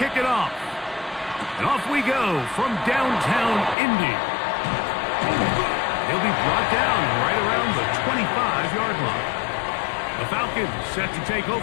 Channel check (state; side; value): drops out; right; at 3.8 s